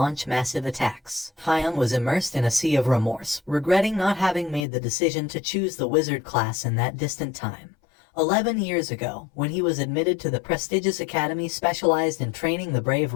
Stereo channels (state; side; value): drops out; right; at 4.7 s